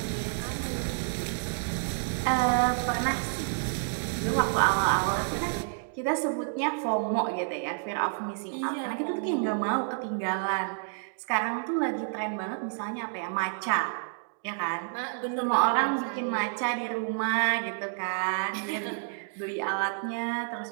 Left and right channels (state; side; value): silent; left; digital silence